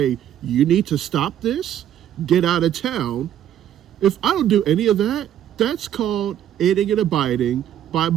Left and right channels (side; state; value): left; quieter; 10.7 dB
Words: you need to stop this, get out of town. If I don't do any of that, that's called aiding and abiding. By